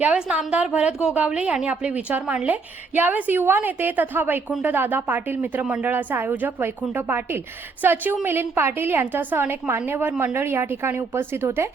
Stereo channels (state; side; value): quieter; left; 4.4 dB